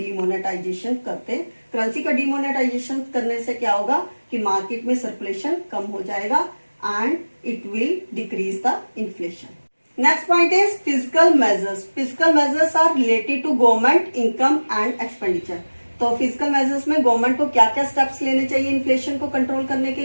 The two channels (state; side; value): inverted; both; correlation -1.00